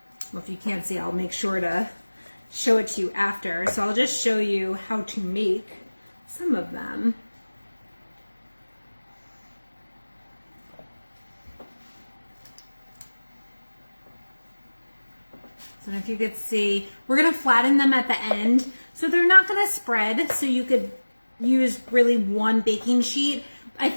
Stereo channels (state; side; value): inverted; both; correlation -1.00